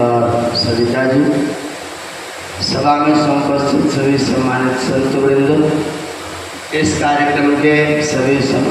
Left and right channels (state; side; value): identical; both; correlation 1.00